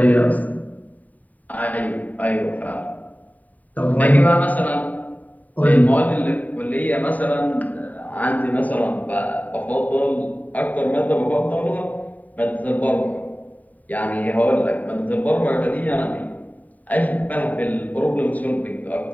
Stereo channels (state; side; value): late; right; 0.075 ms